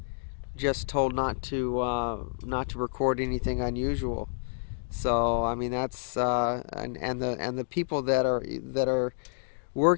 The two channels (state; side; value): silent; right; digital silence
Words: just told not to record anything unusual. So I mean that's and the people that are